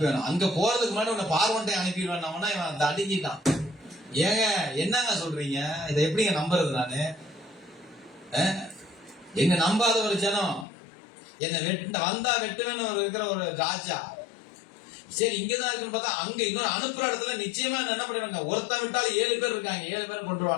அங்க போறதுக்கு முன்னாடி உன்னை பார்வன்ட்டை அனுப்பிடுவேன். இவன் அந்த அடங்கிட்டான். ஏங்க என்னங்க சொல்றீங்க? இதை எப்படிங்க நம்புறது நானு? என்ன நம்பாத ஒரு ஜனம் என்ன வந்தா வெட்டுவேன்னு இருக்கிற ஒரு ராஜா. சரி இங்கதான் இருக்குன்னு பார்த்தா அங்க இன்னொரு அனுப்புற இடத்துல நிச்சயமா என்ன பண்ணுவாங்க? ஒருத்தன் விட்டாலும் 7 பேர் இருக்காங்க. 7 பேர்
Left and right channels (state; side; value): drops out; right; at 10.7 s